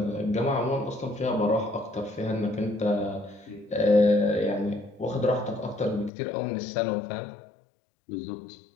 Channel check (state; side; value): drops out; right; at 6.1 s